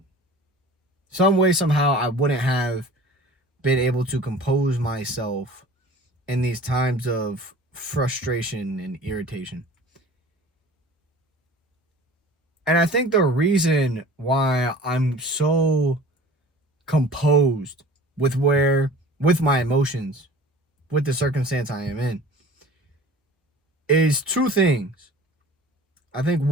Some way, somehow, I wouldn't have been able to compose myself in these times of frustration and irritation. And I think the reason why I'm so composed with my emotions, with the circumstance I am in, is two things. I think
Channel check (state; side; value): normal; both; correlation 0.43